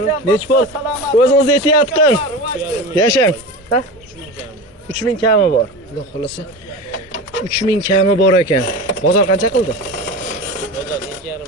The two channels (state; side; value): normal; both; correlation 0.28